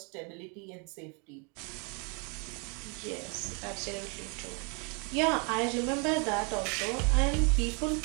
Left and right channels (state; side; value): quieter; left; 34.3 dB